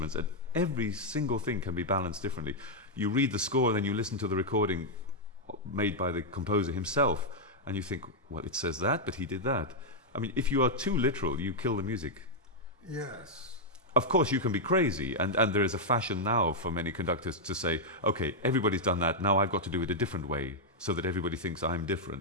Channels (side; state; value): both; normal; correlation -0.03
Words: and every single thing can be balanced differently. You read the score and then you listen to the recording made by the composer himself, and you think, well, it says that, but he did that. I mean, if you are too literal, you kill the music. Yes. Of course, you can be crazy, and there is a fashion now for many conductors to say, okay, everybody's done that, now I've got to do it a different way, so that everybody thinks I'm